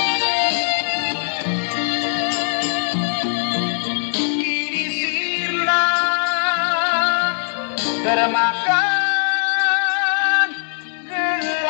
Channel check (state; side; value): silent; right; 60 dB below the other